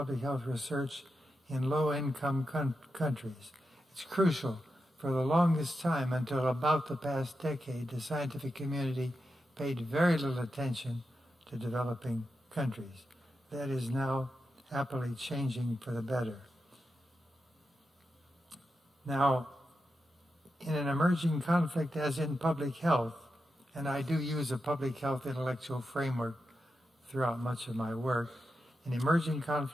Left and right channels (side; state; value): both; normal; correlation 0.88